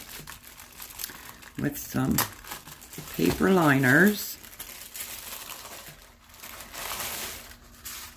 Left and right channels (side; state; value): both; identical; correlation 1.00